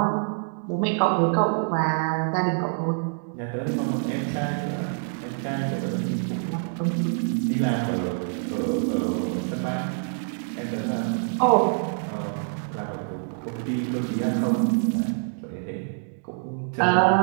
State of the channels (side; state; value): left; silent; 61 dB below the other